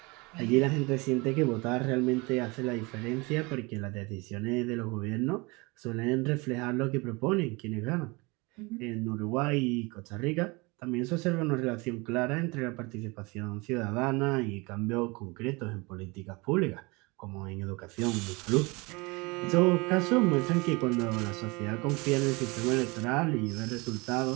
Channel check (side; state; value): left; quieter; 26.2 dB